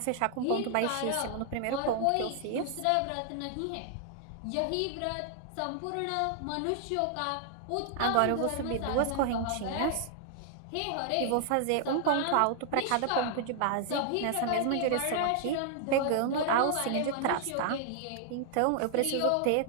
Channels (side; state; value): both; different; correlation 0.00